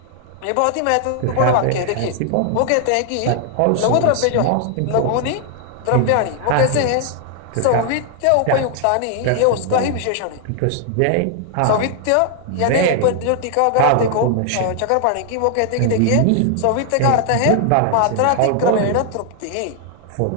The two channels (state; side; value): different; both; correlation 0.00